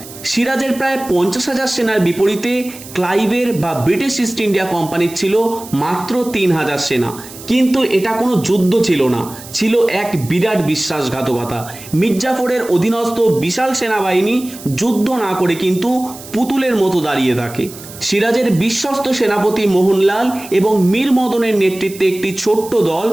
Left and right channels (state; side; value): noise; right; hiss, 16 dB below the sound